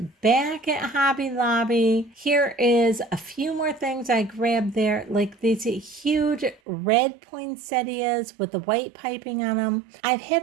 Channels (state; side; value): drops out; left; at 6.6 s